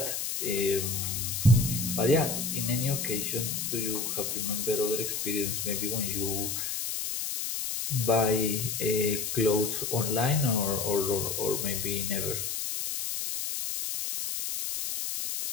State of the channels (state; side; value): noise; left; hiss, 2 dB below the sound